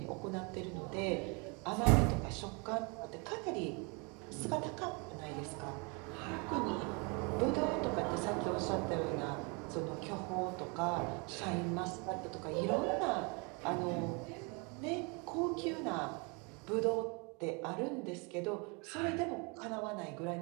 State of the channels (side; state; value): left; quieter; 31.6 dB